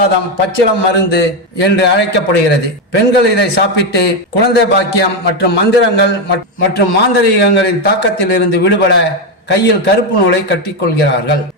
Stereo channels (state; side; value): normal; both; correlation 0.08